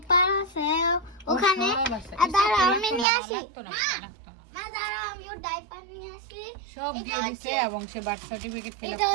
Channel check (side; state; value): left; drops out; at 3.1 s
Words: আছে ওখানে। দাঁড়া আমি নিয়ে আসি, না দাঁড়া আমি ওর ডাইপার নিয়ে আসি। সব দিয়ে দিছে এবং সে বার্থ সার্টিফিকেট ফিল আপ